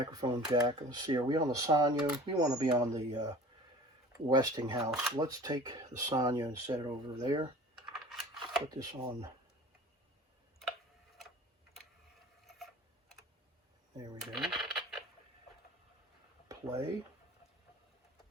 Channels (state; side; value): normal; both; correlation 0.43